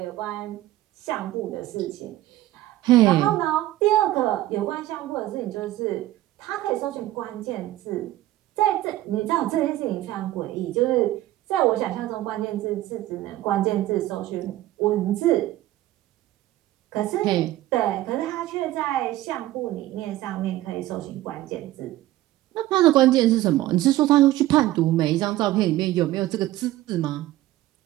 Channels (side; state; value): left; quieter; 15.5 dB